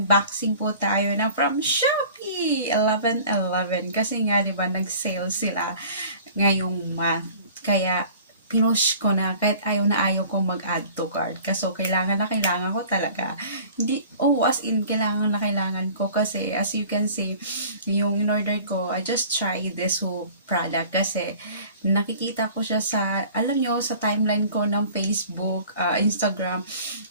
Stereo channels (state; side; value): inverted; both; correlation -0.46